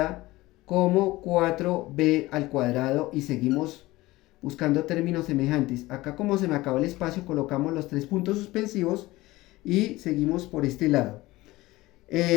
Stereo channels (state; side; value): quieter; right; 19.0 dB